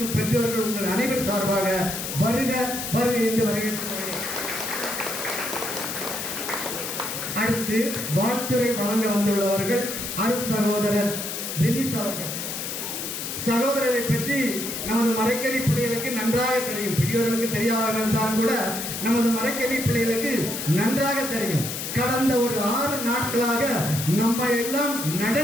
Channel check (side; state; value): left; noise; hiss, 5 dB below the sound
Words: பெற்றோர்கள் உங்கள் அனைவர் சார்பாக வருக வருக என்று வரவேற்கிறேன். அடுத்து வாழ்த்துரை வழங்க வந்துள்ளவர்கள் அருட் சகோதரர் பெனிஸ் அவர்கள். சகோதரரை பற்றி நமது மறைக்கல்வி பிள்ளைகளுக்கு நன்றாக தெரியும். பெரியவர்களுக்கு தெரியாமல் இருந்தாலும் கூட நமது மறைக்கல்வி பிள்ளைகளுக்கு நன்றாக தெரியும். கடந்த ஒரு 6 நாட்களாக நம்ம எல்லாம்